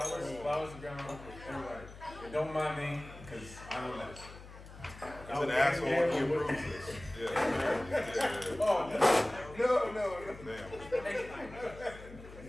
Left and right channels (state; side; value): noise; left; hum, 16 dB below the sound